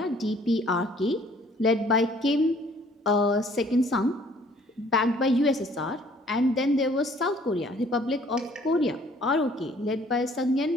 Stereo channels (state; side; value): normal; both; correlation 0.58